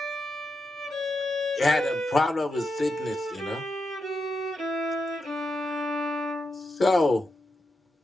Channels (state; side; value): normal; both; correlation 0.86